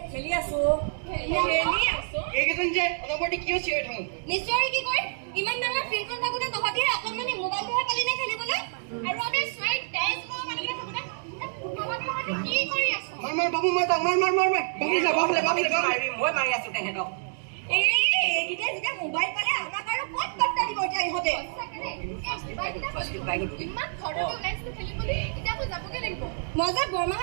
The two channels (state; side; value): silent; left; digital silence